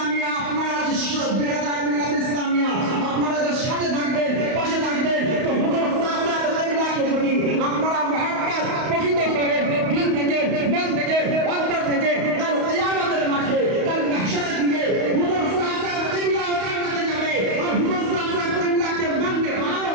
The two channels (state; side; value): late; left; 31 ms